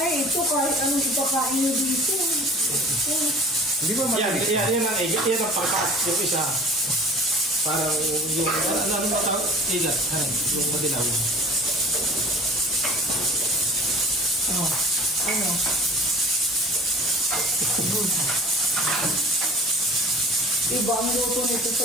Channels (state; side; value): normal; both; correlation 0.46